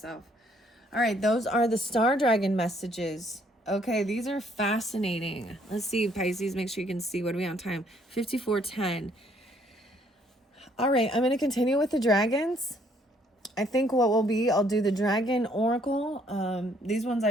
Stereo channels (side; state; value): both; normal; correlation 0.65